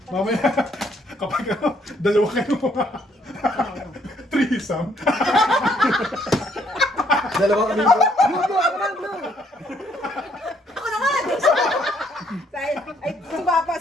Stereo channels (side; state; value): both; normal; correlation 0.68